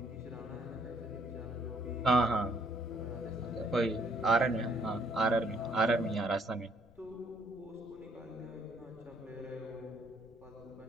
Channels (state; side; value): noise; left; rumble, 27 dB below the sound